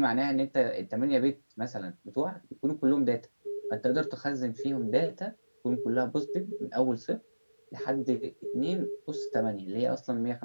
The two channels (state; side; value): inverted; both; correlation -1.00